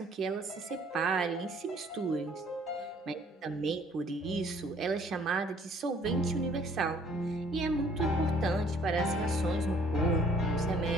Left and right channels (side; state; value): both; normal; correlation 0.59